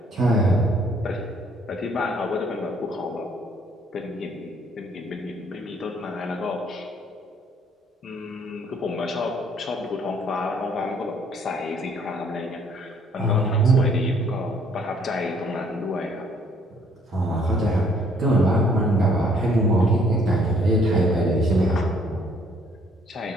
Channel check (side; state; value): both; normal; correlation 0.63